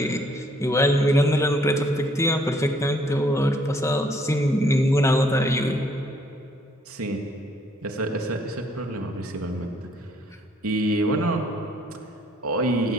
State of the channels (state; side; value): normal; both; correlation 0.65